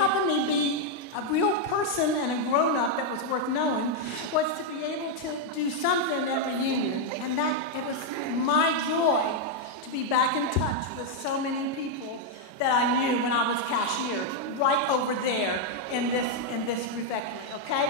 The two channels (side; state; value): right; late; 32 ms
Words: me be a real person and a grown-up that was worth knowing was to be able to do something at reunion. And that it was my joy to be back in touch with so many people that I knew when I was cashier, right over there in this refectory,